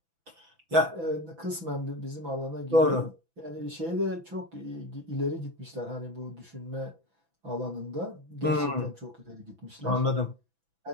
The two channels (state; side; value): late; left; 6.0 ms